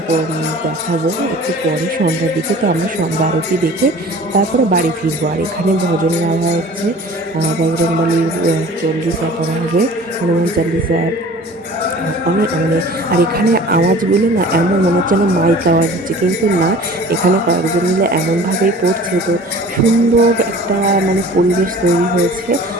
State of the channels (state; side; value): normal; both; correlation 0.45